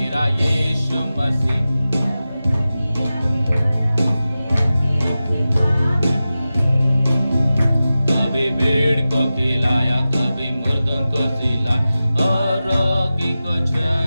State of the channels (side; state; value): both; inverted; correlation -0.94